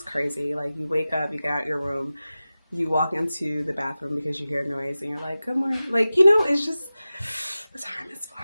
crazy. Like you wake up, you get out your room, you walk into the bathroom because you hear noise and you're like, good morning. Like, you know, it's just the time is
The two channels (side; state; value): both; inverted; correlation -0.95